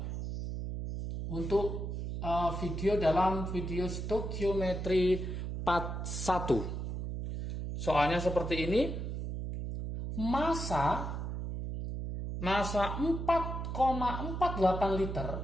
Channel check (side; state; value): right; noise; hum, 4 dB below the sound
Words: untuk video dalam video stoikiometri part 1. Soalnya seperti ini. Massa 4,48 liter